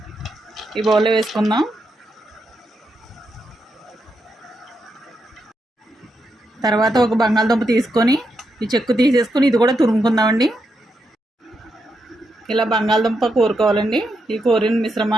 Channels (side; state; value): both; normal; correlation 0.83